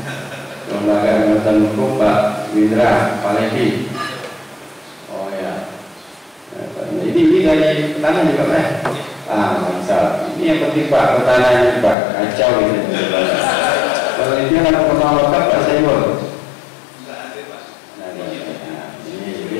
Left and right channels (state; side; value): drops out; right; at 12.0 s